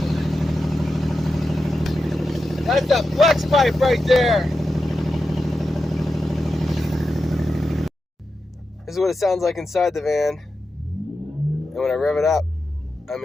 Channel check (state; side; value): normal; both; correlation 0.90